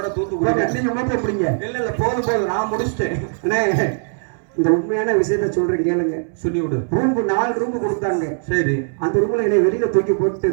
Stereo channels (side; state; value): left; silent; 66 dB below the other